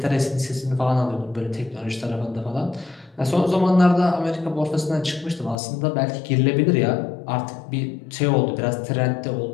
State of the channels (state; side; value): drops out; right; at 5.6 s